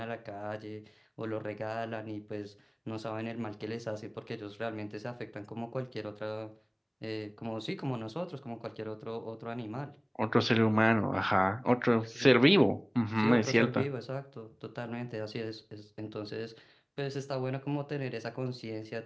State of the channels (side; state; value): both; identical; correlation 1.00